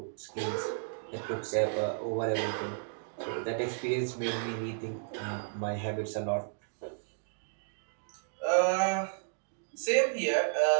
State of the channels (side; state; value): left; silent; digital silence